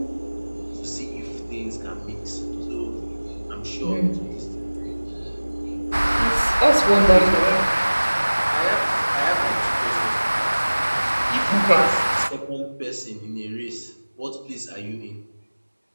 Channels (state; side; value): inverted; both; correlation -1.00